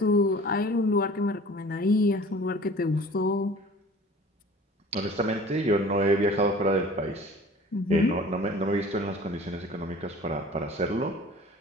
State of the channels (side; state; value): both; normal; correlation 0.45